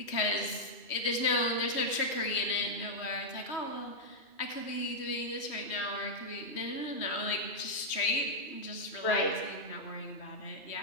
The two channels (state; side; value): late; right; 3.1 ms